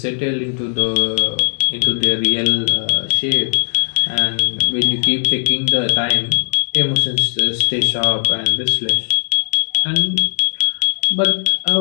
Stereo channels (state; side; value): silent; right; 57 dB below the other